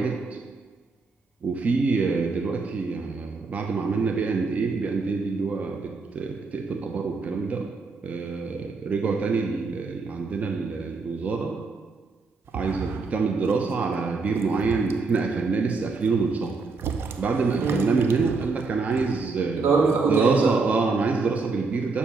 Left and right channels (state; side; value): quieter; left; 4.2 dB